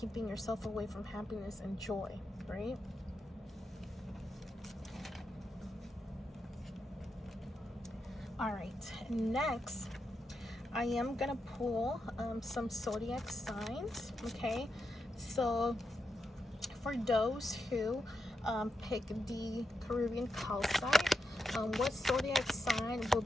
yourself away from happiness and joy, right? All right, next I am gonna pull some zodiac signs. Okay, so for those who pick the Caribbean Calcite, what zodiac sign will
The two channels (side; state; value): both; normal; correlation 0.86